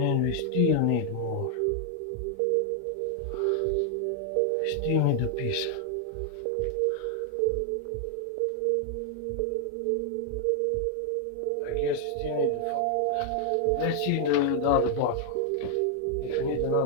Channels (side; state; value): both; different; correlation 0.00